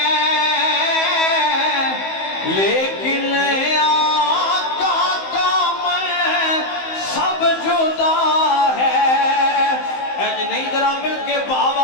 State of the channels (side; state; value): right; late; 15 ms